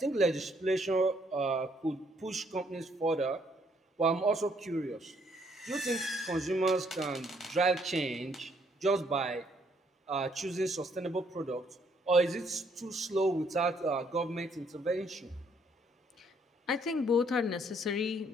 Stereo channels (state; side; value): normal; both; correlation 0.68